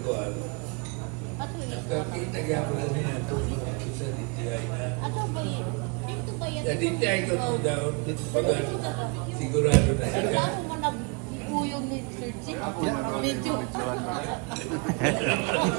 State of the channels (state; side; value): quieter; left; 32.5 dB